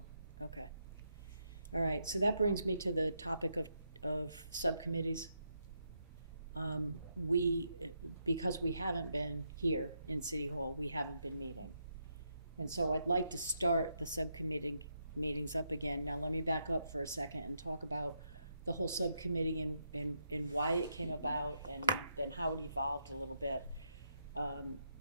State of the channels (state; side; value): inverted; both; correlation -0.80